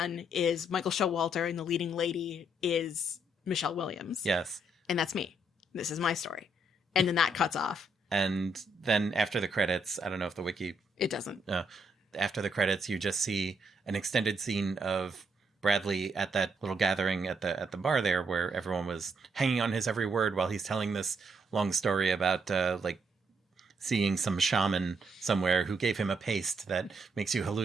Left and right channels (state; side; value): normal; both; correlation 0.74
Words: is Michael Showalter, and the leading lady is Michelle Williams. Yes. And that's me. This is my story. And then that cuts off. And then after the credits, I don't know if the Wiki... It doesn't. After the credits, you just see an extended scene of Bradley at that little gathering at the bar there, where everyone was hanging on his every word while he's telling this long story about like seeing some shaman somewhere who gave him a paste that makes you